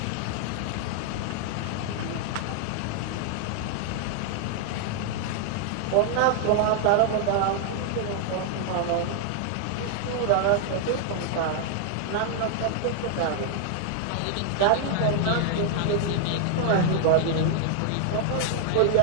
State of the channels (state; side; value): different; both; correlation 0.00